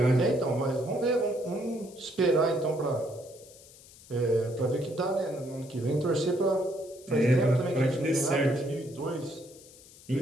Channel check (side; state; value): left; noise; hiss, 22 dB below the sound